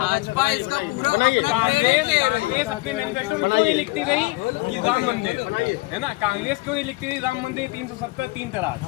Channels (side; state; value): right; quieter; 22.3 dB